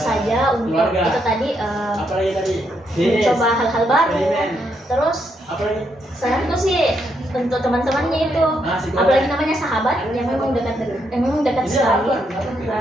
untuk itu tadi mencoba hal-hal baru. Terus saranku sih untuk teman-temannya itu, apalagi namanya sahabat yang memang dekat sekali,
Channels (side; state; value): both; normal; correlation 0.78